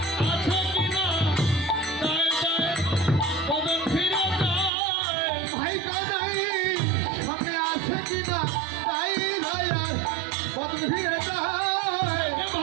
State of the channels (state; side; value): drops out; left; at 4.7 s